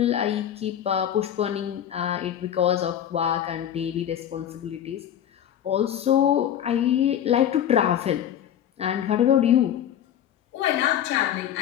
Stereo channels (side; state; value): right; quieter; 10.3 dB